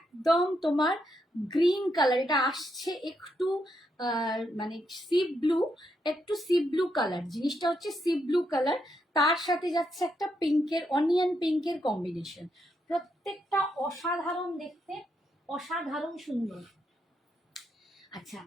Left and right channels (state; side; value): normal; both; correlation 0.80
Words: তোমার গ্রিন কালার, এটা আসছে একটু মানে সি ব্লু, একটু সি ব্লু কালার, জিনিসটা হচ্ছে সি ব্লু কালার, তার সাথে যাচ্ছে একটা পিঙ্কের, অনিয়ন পিঙ্কের কম্বিনেশন, প্রত্যেকটা অসাধারণ দেখতে, অসাধারণ সুন্দর। আচ্ছা